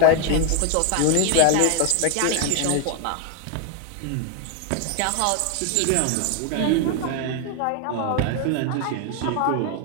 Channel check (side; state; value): both; different; correlation 0.01